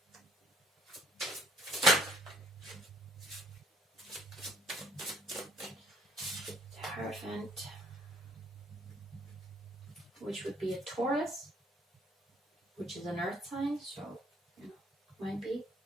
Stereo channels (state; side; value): normal; both; correlation 0.61